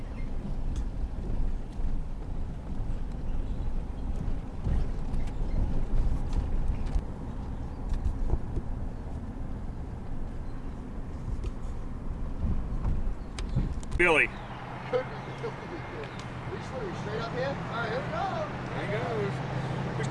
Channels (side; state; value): both; identical; correlation 1.00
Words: Billy. Could be. We straight up here? All right, here we go. There he goes. We